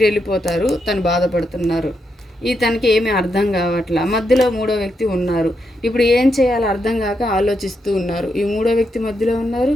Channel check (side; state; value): both; normal; correlation 0.82